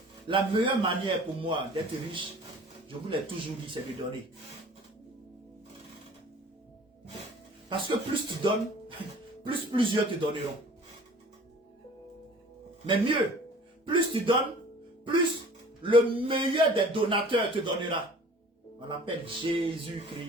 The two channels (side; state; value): both; normal; correlation 0.47